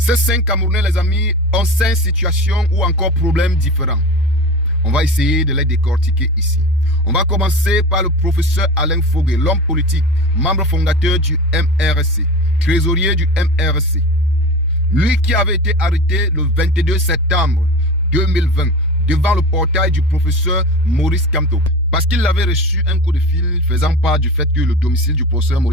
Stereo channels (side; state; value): both; normal; correlation 0.31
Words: 5 Camerounais, les amis, ont 5 situations ou encore problèmes différents. On va essayer de les décortiquer ici. On va commencer par le professeur Alain Fogué, l'homme politique, membre fondateur du MRC, trésorier du MRC. Lui qui avait été arrêté le 22 septembre 2020 devant le portail du professeur Maurice Kamto. Parce qu'il avait reçu un coup de fil faisant part du fait que le domicile du professeur